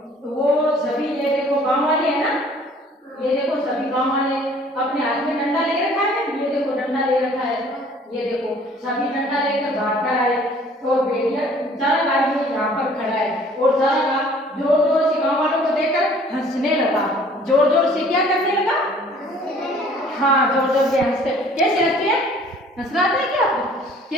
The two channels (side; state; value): both; normal; correlation 0.54